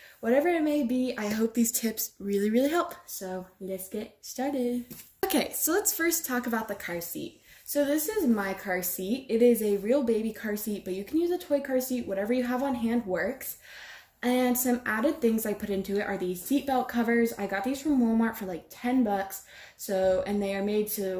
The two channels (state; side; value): identical; both; correlation 1.00